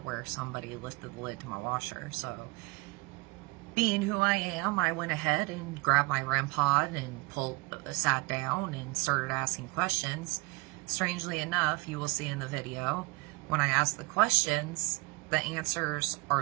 where somebody lifted the lid to my washer. So being who I am, I went ahead and grabbed my Rempod and sat down and started asking questions. Strangely enough, you will see in the video, when I ask the questions, the answers are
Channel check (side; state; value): left; quieter; 25.4 dB